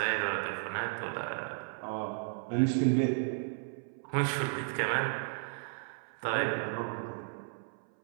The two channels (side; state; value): left; silent; 55 dB below the other